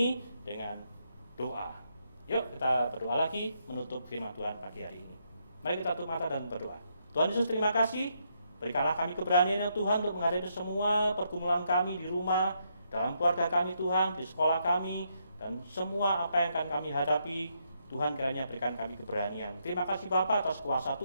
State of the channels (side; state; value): both; inverted; correlation -0.77